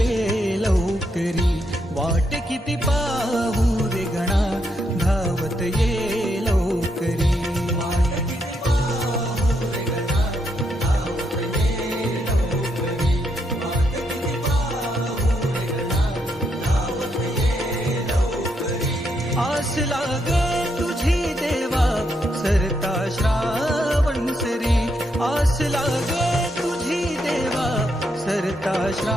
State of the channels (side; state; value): both; normal; correlation 0.78